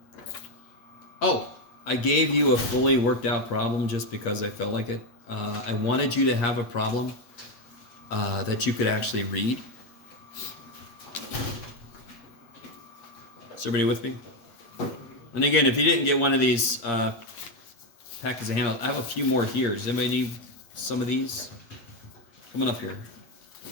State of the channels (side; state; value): right; late; 8.6 ms